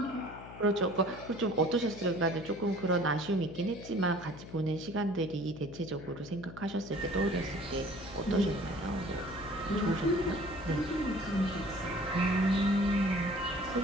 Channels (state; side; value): noise; left; hum, 14 dB below the sound